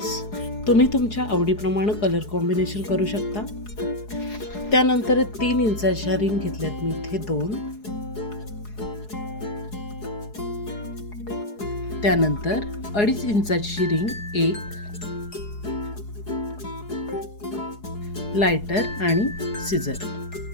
तुम्ही तुमच्या आवडीप्रमाणे कलर कॉम्बिनेशन करू शकता. त्यानंतर 3 इंचाच्या रिंग घेतल्यात मी इथे 2. त्यानंतर 2.5 इंचाची रिंग 1, लायटर आणि सिझर.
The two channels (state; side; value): late; right; 4.8 ms